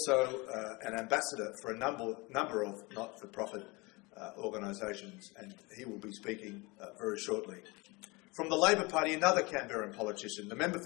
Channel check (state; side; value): quieter; right; 25.6 dB